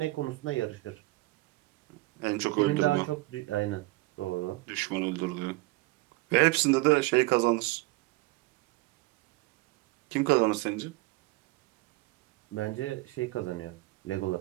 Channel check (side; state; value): left; quieter; 20.8 dB